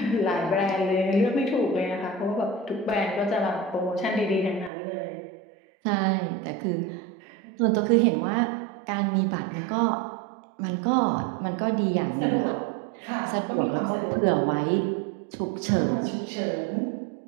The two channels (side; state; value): left; drops out; at 4.7 s